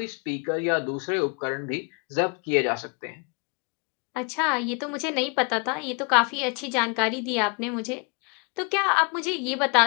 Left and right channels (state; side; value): quieter; right; 33.6 dB